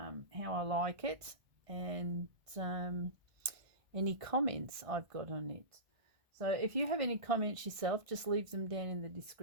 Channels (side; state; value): left; late; 1.6 ms